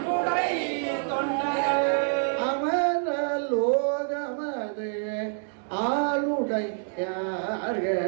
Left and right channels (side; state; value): left; silent; digital silence